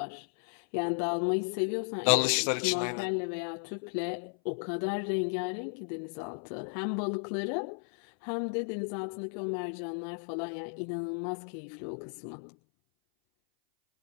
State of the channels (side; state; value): right; silent; 55 dB below the other